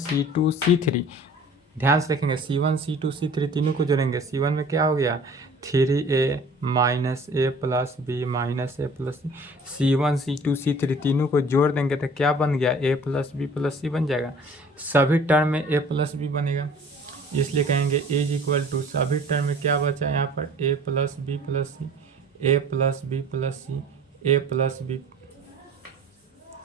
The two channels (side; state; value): both; normal; correlation 0.48